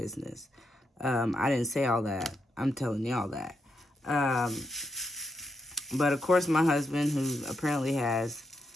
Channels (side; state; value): both; normal; correlation 0.82